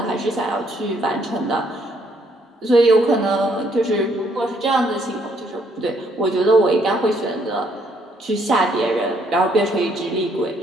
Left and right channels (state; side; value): normal; both; correlation 0.69